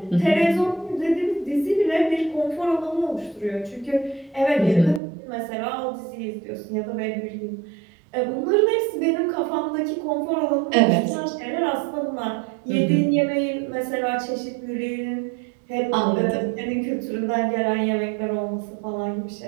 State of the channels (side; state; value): left; drops out; at 5.0 s